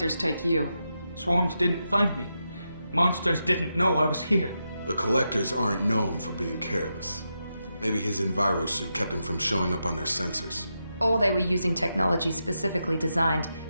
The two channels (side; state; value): both; inverted; correlation -0.86